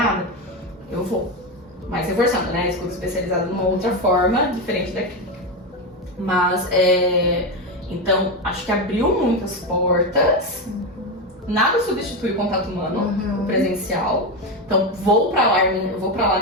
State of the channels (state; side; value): normal; both; correlation 0.13